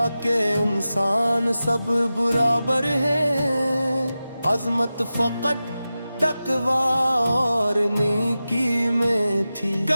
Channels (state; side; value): inverted; both; correlation -0.94